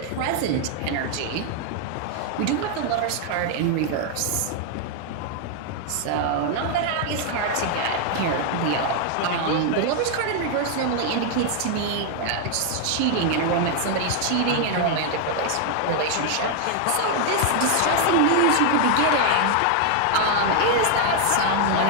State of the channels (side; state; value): both; different; correlation 0.00